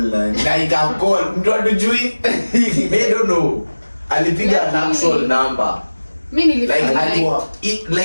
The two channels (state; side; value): inverted; both; correlation -1.00